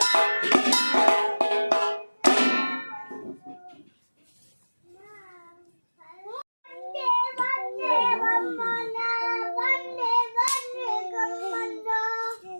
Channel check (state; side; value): inverted; both; correlation -1.00